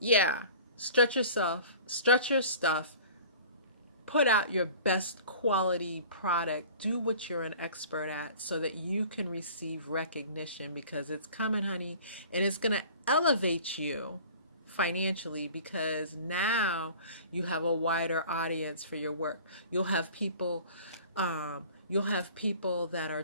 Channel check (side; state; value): both; inverted; correlation -0.44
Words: stretch yourself, stretch your stuff, put out your best quality product, do what you're an expert at so that you can receive recognition, because it's coming, honey, and it's going to elevate you financially, because now you have a wider audience for your work. You'll have people that are